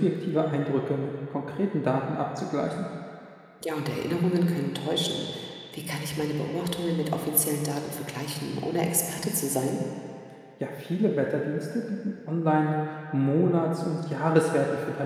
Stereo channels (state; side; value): identical; both; correlation 1.00